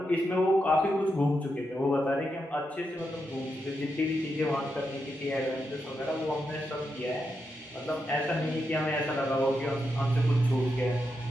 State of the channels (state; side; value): normal; both; correlation 0.85